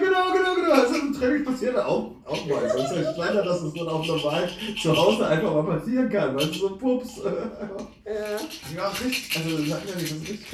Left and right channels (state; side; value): identical; both; correlation 1.00